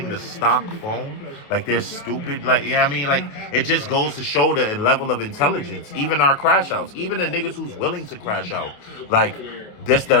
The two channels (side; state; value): right; late; 28 ms